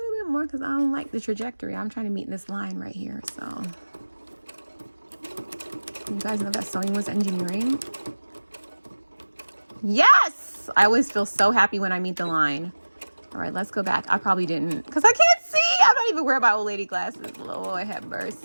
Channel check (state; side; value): inverted; both; correlation -1.00